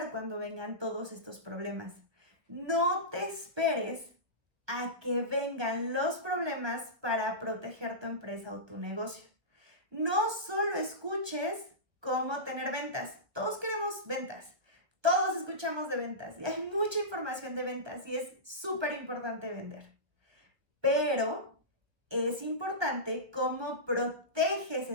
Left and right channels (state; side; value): late; left; 1.5 ms